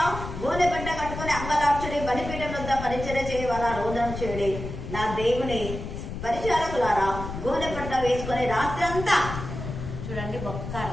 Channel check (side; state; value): left; noise; rumble, 7 dB below the sound